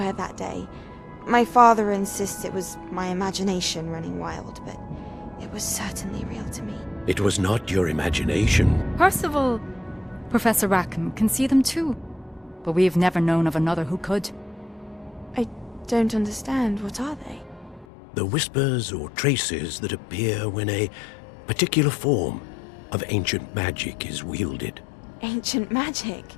that day. My father insists it was my imagination running wild, but it was certainly real to me. It was not your imagination. Percival, Professor Rackham can see them too. But we've never known of another who could. I don't understand. What are they? The whispers or traces that appear when a particular form of ancient magic is wielded. Ancient magic?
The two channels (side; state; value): right; drops out; at 17.9 s